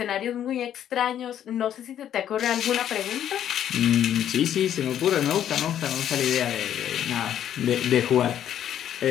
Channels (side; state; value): right; quieter; 10.4 dB